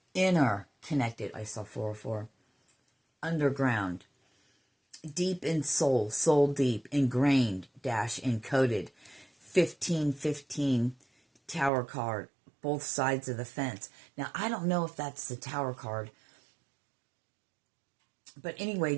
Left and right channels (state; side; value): drops out; left; at 11.7 s